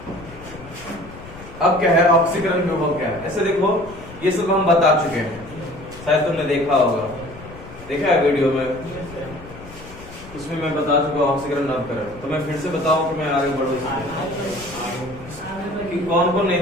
अब क्या है ऑक्सीकरण विभव? क्या है? ऐसे देखो, ये सब हम बता चुके हैं, शायद तुमने देखा होगा, देखा है वीडियो में। उसमें मैं बता चुका ऑक्सीकरण नवकरण, तो मैं फिर से बताऊं कि मैं आगे बढ़ूं कि कौन कौन नहीं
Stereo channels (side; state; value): left; noise; rumble, 17 dB below the sound